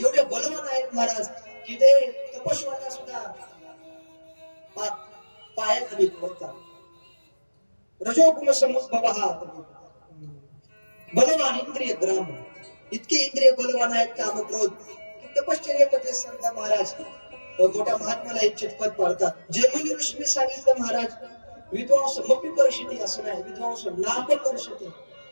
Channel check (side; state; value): both; inverted; correlation -1.00